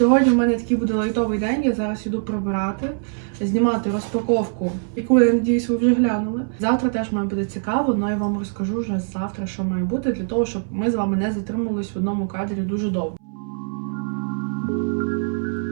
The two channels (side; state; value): left; silent; 64 dB below the other